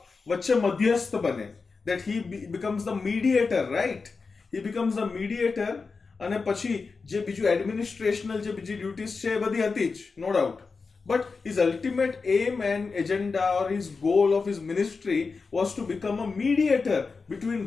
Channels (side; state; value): right; quieter; 4.5 dB